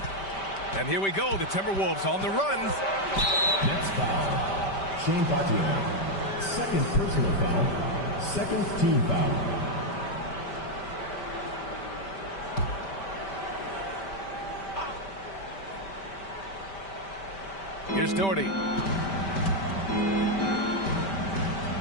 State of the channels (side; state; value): right; late; 5.1 ms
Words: And here we go. The Timberwolves on the run. Next foul. Shane Battier. 2nd personal foul. 2nd team foul. Here's Doherty.